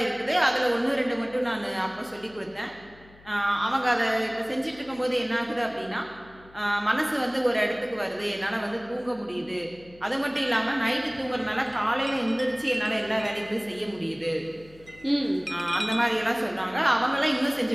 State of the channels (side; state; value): left; noise; hum, 24 dB below the sound